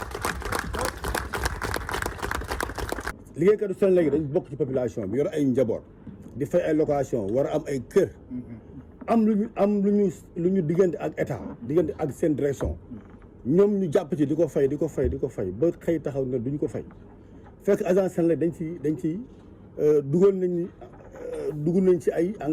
liggéeykatu Senelec dañ bokk ci population bi yor ay njaboot di fay ay location war a am ay kër am lu ñu diggante ak état diggante ak seen direction ñoom ñu jàpp ci di ko fay ba xëy taxaw ne duñ ko fay fekk agence Senelec dañ ci dugg nañ ci ay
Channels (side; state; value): both; identical; correlation 1.00